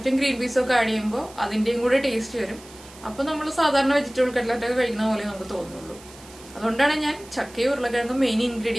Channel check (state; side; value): noise; right; hiss, 21 dB below the sound